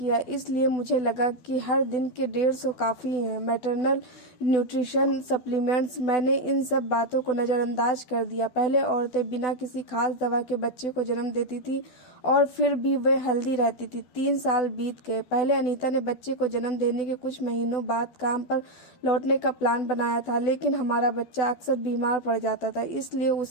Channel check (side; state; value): right; late; 12 ms